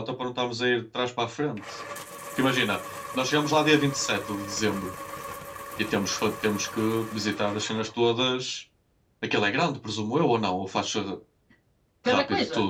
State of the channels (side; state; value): both; identical; correlation 1.00